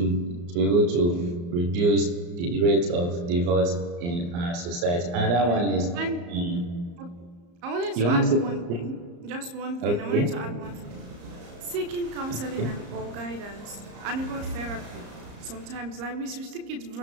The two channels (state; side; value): late; left; 34 ms